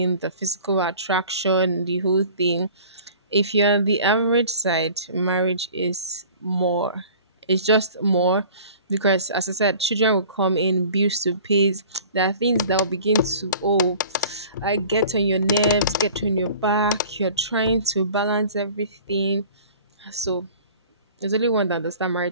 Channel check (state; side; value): inverted; both; correlation -0.46